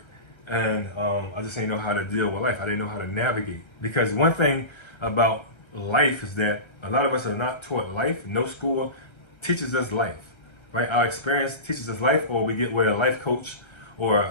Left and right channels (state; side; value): late; right; 1.3 ms